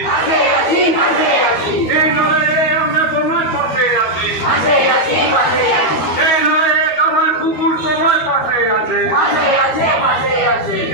এই লড়াইয়ে আমরা তোমার পাশে আছি এই লড়াইয়ে আমার কুকুর তোমার পাশে আছে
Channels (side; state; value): right; late; 13 ms